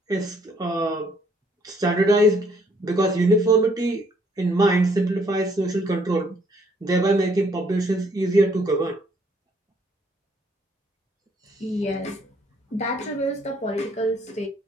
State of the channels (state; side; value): normal; both; correlation 0.66